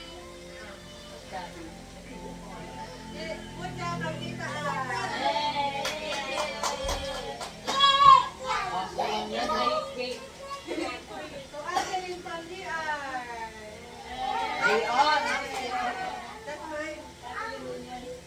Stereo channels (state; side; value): identical; both; correlation 1.00